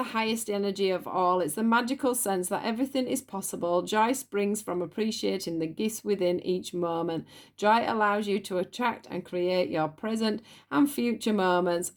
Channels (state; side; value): identical; both; correlation 1.00